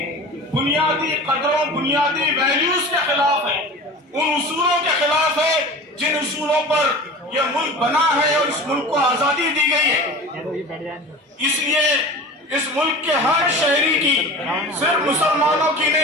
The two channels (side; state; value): both; normal; correlation 0.35